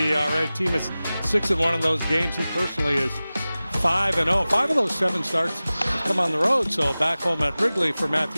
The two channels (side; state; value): both; inverted; correlation -0.97